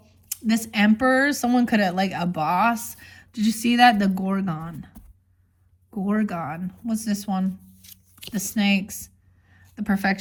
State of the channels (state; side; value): identical; both; correlation 1.00